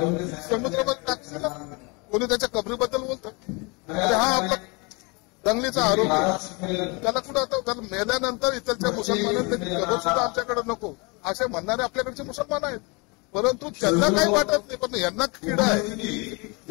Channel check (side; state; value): right; quieter; 29.4 dB